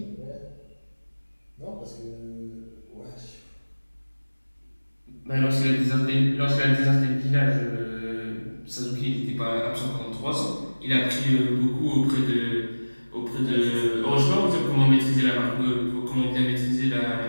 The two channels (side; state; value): both; inverted; correlation -1.00